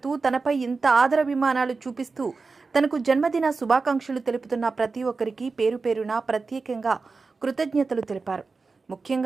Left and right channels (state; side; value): quieter; left; 4.2 dB